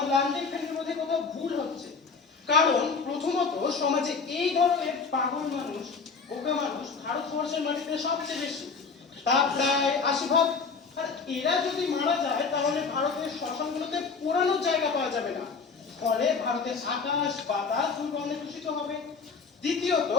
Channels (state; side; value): quieter; right; 5.0 dB